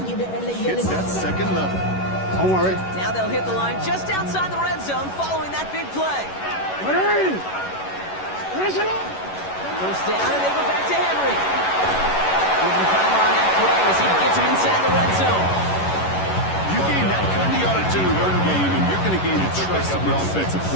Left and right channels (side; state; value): right; late; 11 ms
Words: hits that second level. Don't worry. Now they'll hit the line just outside the red zone following that big play. First down, and they go back to Henry. Giving time on that play as he gets him inside the red zone. You gain that kind of yardage in the run game, and you're going to gain the trust of the offensive